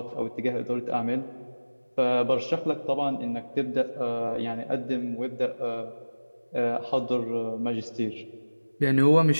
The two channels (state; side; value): inverted; both; correlation -1.00